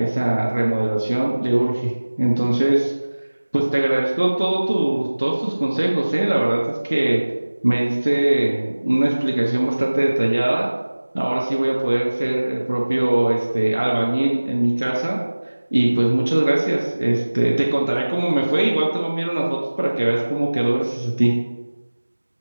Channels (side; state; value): both; inverted; correlation -1.00